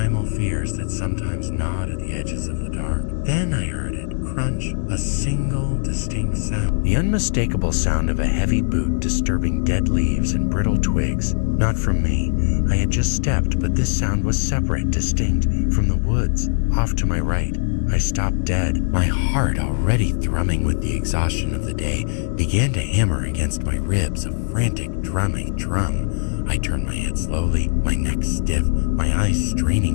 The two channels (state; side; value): silent; right; digital silence